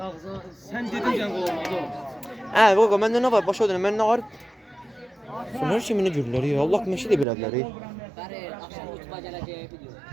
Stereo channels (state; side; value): drops out; left; at 7.2 s